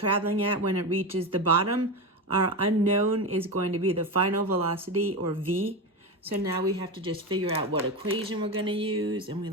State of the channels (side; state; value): both; normal; correlation 0.19